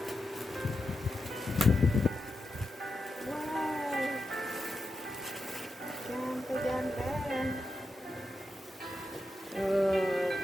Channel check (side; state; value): both; normal; correlation 0.88